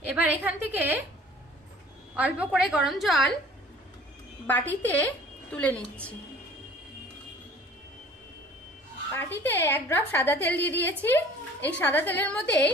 এবার এখান থেকে অল্প করে গরম জল বাটিতে তুলে নিচ্ছি। বাটিতে 1 ড্রপ সাদা তেল দিয়ে দিয়েছি। এই সাদা তেলের মধ্যে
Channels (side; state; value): both; normal; correlation 0.49